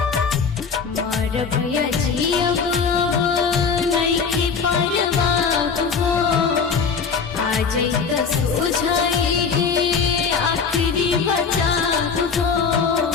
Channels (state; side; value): quieter; right; 5.7 dB